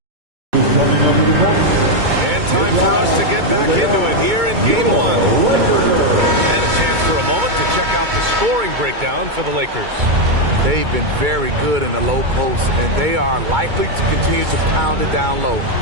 Who's coming over the court? And time for us to get back into it here in game one. And a chance for a moment to check out the scoring breakdown for the Lakers. They've been very good in the low post, and they are likely to continue to pound it down low,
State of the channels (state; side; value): late; left; 2.2 ms